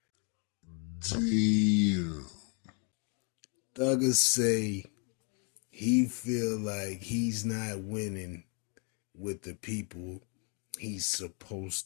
Damn. Thugger say he feel like he's not winning with the people he's supposed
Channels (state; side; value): quieter; right; 37.7 dB